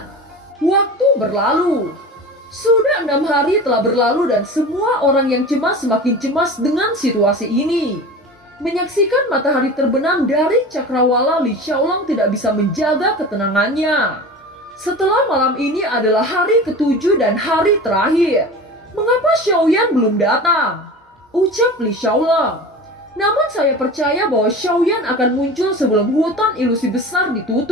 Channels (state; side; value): normal; both; correlation 0.34